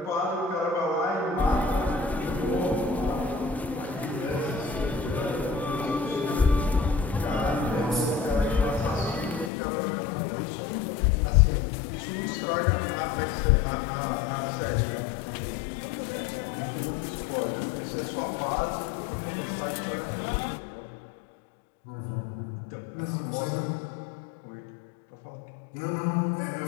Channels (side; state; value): right; drops out; at 9.5 s